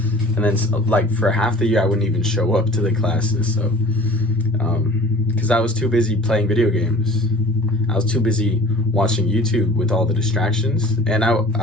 And then like for half the year I wouldn't even show up to the classes, so because I was too busy playing video games. I was too busy watching YouTube with all the distractions, and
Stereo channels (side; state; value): both; normal; correlation 0.46